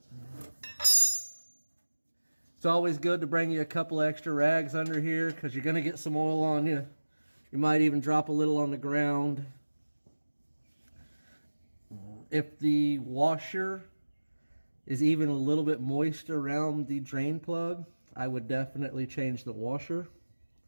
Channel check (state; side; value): inverted; both; correlation -1.00